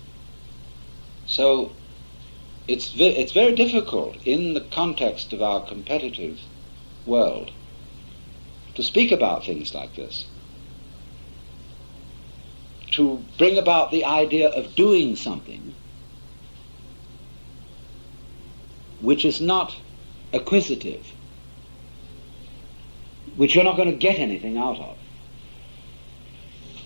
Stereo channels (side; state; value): both; inverted; correlation -1.00